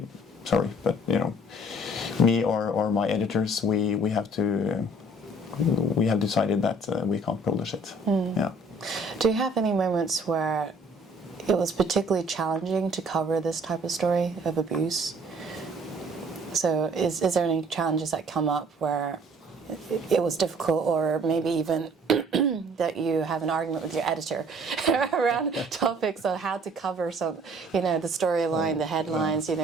sorry, but you know, me or my editors, we have decided that we can't publish it. Yeah. Do you have any moments where it was particularly challenging to cover this type of story of abuse? So is there any challenges that come up where it was difficult, or maybe even that you have an argument with your editor around topics on how to cover some, you know, the storyline, the headlines, you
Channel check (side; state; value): both; normal; correlation 0.56